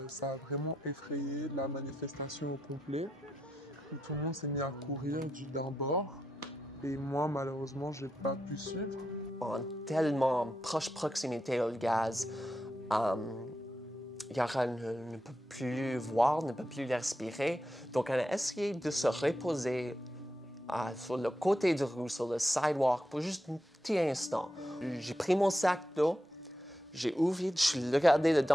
ça a vraiment effrayé la manifestation au complet. Où tout le monde s'est mis à courir d'un bord. Et moi, malheureusement, j'ai pas pu suivre. En tellement proche proximité au gaz, Yara ne peut plus voir, ne peut plus respirer. Donc, on a essayé de se reposer sur le côté de rue, sur le sidewalk, pour juste un petit instant. J'ai pris mon sac d'eau, j'ai ouvert, je suis regardé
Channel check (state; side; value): normal; both; correlation 0.85